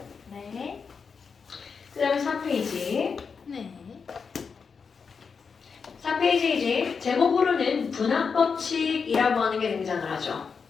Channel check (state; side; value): quieter; right; 5.6 dB